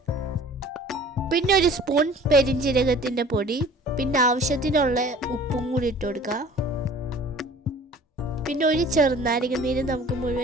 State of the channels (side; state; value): both; normal; correlation 0.47